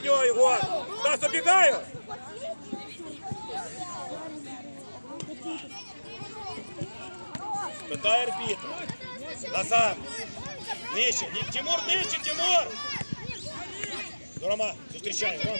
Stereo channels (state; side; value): inverted; both; correlation -1.00